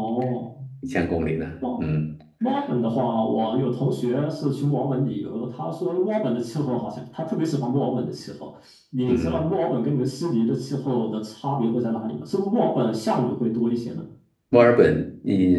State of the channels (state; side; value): identical; both; correlation 1.00